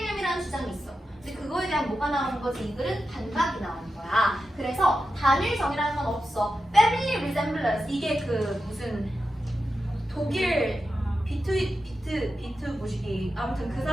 주장이 있어. 근데 그거에 대한 뭐가 나오는 거지? 이 글은 반박이 나오는 거야. 그래서 단일성이라는 건 없어. Family resemblance 이게 그 무슨 독일 비트 무식이 아무튼 그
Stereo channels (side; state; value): both; normal; correlation 0.90